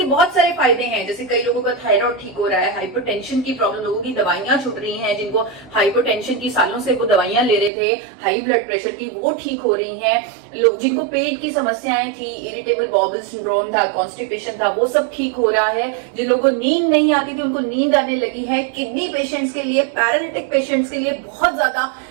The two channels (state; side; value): drops out; left; at 7.7 s